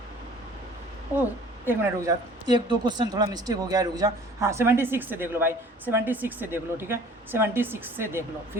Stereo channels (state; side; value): normal; both; correlation 0.49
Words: ओ एक मिनट रुक जा, एक दो क्वेश्चन थोड़ा मिस्टेक हो गया, रुक जा। हाँ 76 से देख लो भाई, 76 से देख लो, ठीक है 76 से देख लो